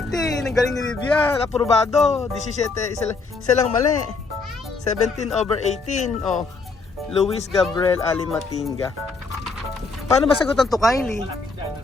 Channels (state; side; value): quieter; right; 4.1 dB